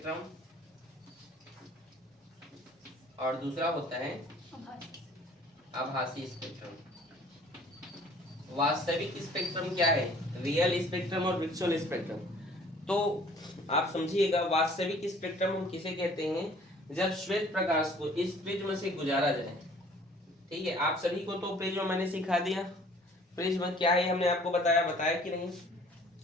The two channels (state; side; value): normal; both; correlation 0.54